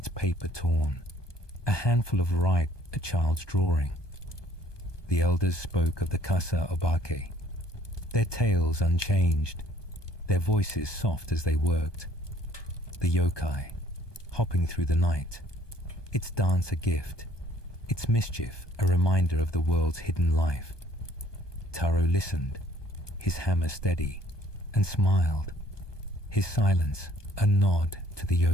paper torn, a handful of rice, a child's drawing. The elders spoke of the Kasa Obake, their tales unchanged, their voices soft as they worked. The yokai, hopping through the night, its dance a gift, its mischief a reminder of the world's hidden life. Taro listened, his hammer steady, and smiled, his silence a nod to the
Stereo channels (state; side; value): late; right; 1.2 ms